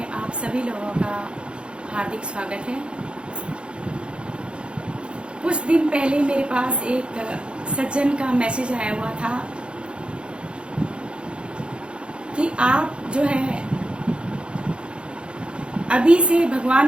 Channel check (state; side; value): late; left; 0.056 ms